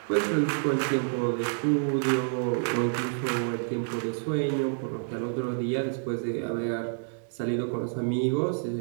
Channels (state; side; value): silent; left; digital silence